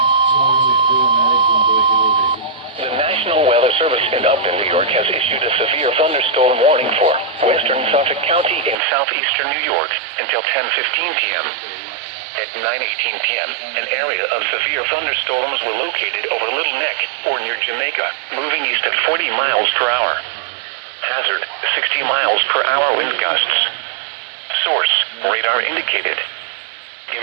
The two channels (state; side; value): drops out; left; at 8.8 s